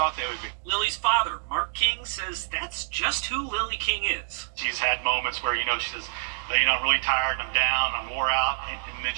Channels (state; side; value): silent; left; 60 dB below the other